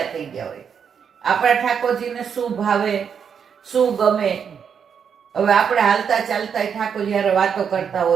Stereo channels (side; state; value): left; quieter; 7.2 dB